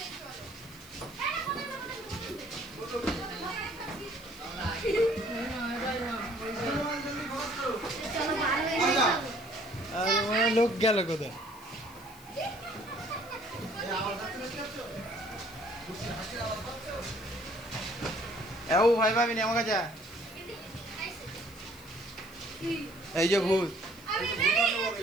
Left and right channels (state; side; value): noise; left; hiss, 21 dB below the sound